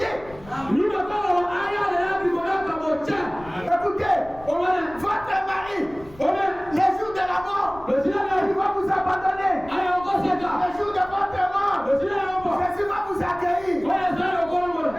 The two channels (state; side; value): noise; left; rumble, 21 dB below the sound